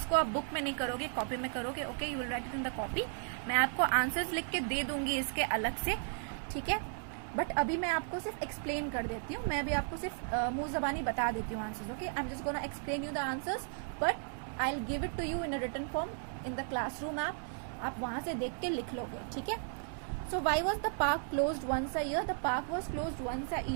आप book में नहीं करोगे, copy में करोगे. Okay, you will write it in the copy. मैं आपको answers लिख के दे दूंगी इसके अलग से, ठीक है. बट अभी मैं आपको सिर्फ एक्सप्लेन कर देती हूँ. मैं अभी आपको सिर्फ मुंह जबानी बता देती हूँ answers. Okay, I am just gonna explain you the answers, but I will give it to you in a written form in the classroom app. आप वहां से देख के लिख लोगे, ठीक है. So why was the park closed once a year? The park was closed once a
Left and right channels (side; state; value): left; silent; 54 dB below the other